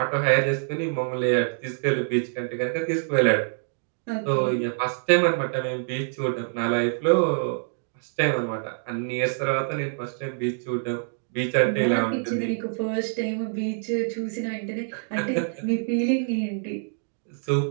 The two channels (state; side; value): silent; left; digital silence